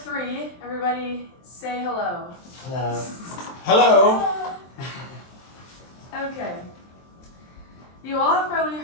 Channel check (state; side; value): late; right; 23 ms